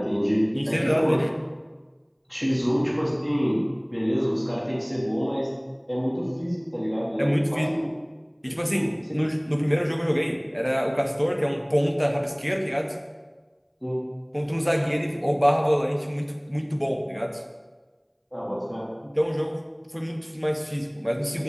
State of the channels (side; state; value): both; identical; correlation 1.00